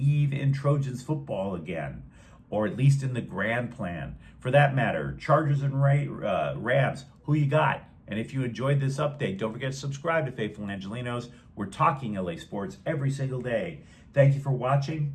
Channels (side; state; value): both; identical; correlation 1.00